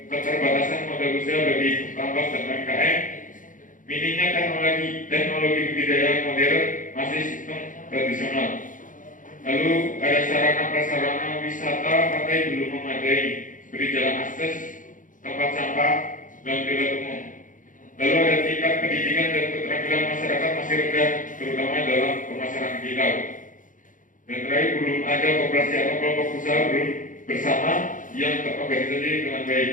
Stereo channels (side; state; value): right; late; 0.38 ms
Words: keterbatasan modal usaha bagi tambang dan UMKM, minimnya teknologi budidaya modern masih sistem tradisional. Lalu ada sarana prasarana wisata pantai belum memadai seperti jalan akses, tempat sampah, dan toilet umum. Lalu ada tingkat pendidikan dan keterampilan masyarakat masih rendah, terutama dalam pemasaran digital. Dan terakhir, belum ada koperasi atau kelompok usaha belum bersama yang terorganisasi dengan baik.